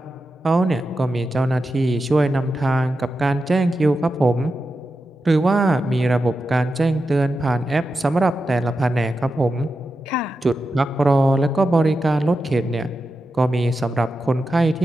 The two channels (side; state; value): both; normal; correlation 0.90